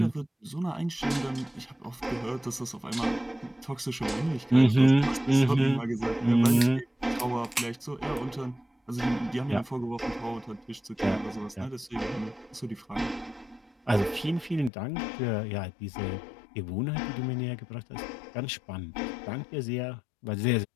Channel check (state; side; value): drops out; right; at 14.7 s